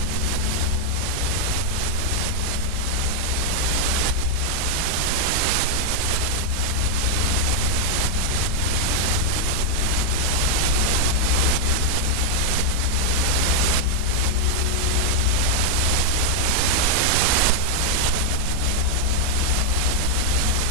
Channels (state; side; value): different; both; correlation 0.00